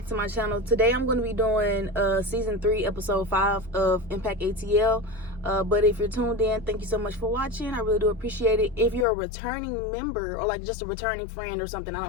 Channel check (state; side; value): drops out; right; at 9.1 s